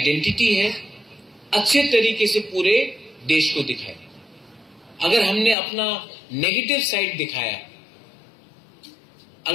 है, अच्छे तरीके से पूरे देश को दिखाए। अगर हमने अपना नेगेटिव साइड दिखाया,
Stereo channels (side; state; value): right; drops out; at 5.6 s